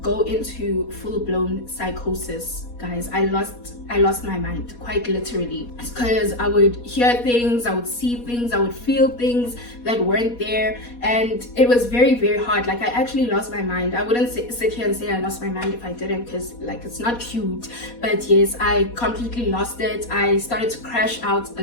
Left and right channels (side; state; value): right; late; 4.2 ms